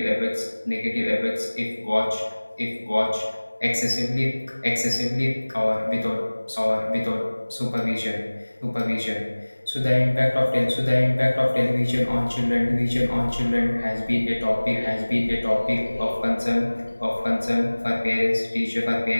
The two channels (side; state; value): both; inverted; correlation -1.00